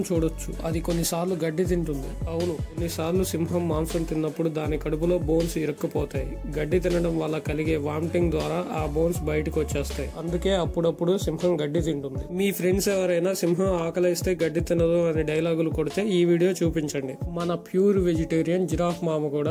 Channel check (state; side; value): identical; both; correlation 1.00